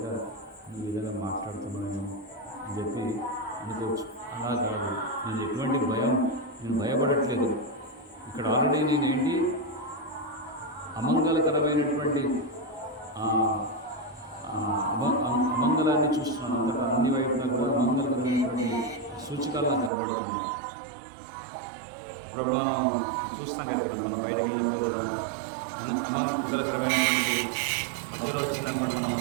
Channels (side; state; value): left; drops out; at 19.9 s